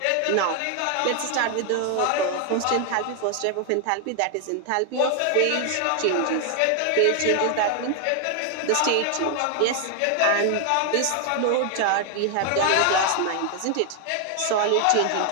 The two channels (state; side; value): different; both; correlation 0.00